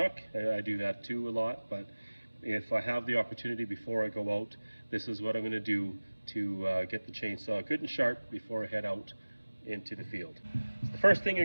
I do that too a lot, but if I have the opportunity before I go out, this is what I'm going to do to get the chainsaw good and sharp before I head out into the field. So the first thing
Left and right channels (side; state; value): both; inverted; correlation -1.00